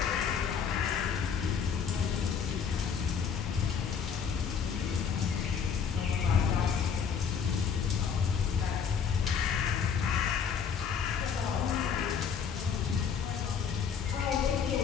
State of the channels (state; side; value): quieter; right; 6.9 dB